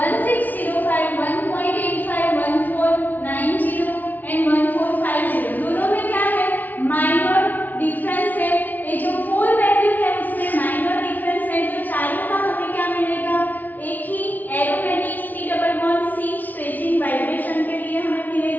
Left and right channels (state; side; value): late; right; 0.081 ms